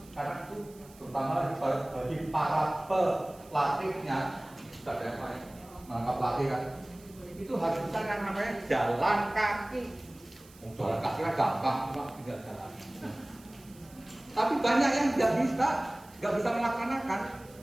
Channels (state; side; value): noise; right; hiss, 24 dB below the sound